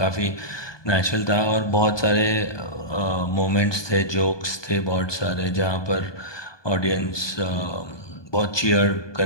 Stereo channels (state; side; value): late; right; 1.2 ms